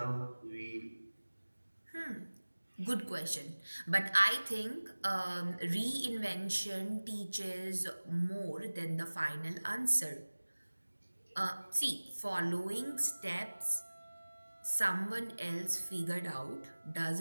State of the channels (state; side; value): inverted; both; correlation -1.00